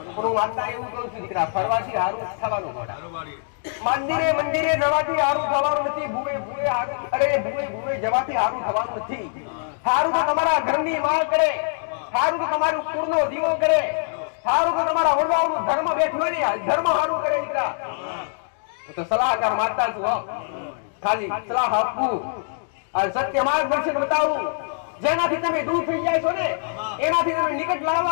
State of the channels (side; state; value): right; silent; digital silence